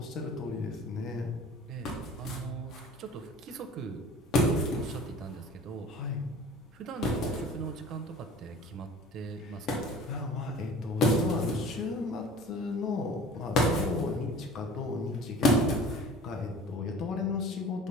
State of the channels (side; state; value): both; normal; correlation 0.44